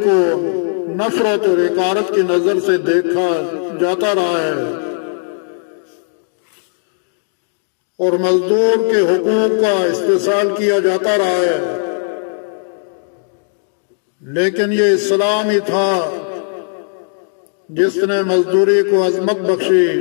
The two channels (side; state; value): right; silent; digital silence